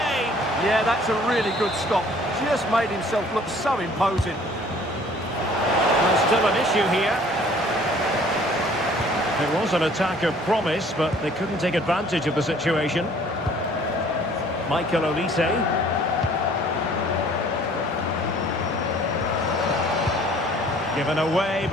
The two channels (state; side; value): normal; both; correlation 0.55